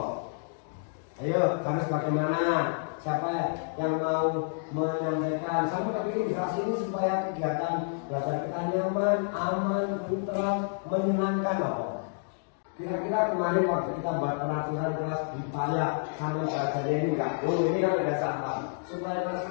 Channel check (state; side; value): silent; right; digital silence